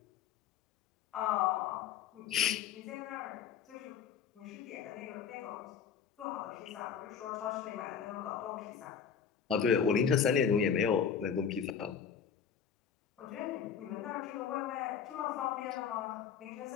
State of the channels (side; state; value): right; quieter; 7.4 dB